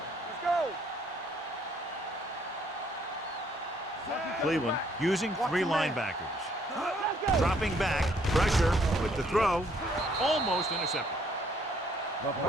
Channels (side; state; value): both; normal; correlation 0.66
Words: Let's go. Cleveland using three linebackers. Dropping back, pressure with the throw, almost intercepted.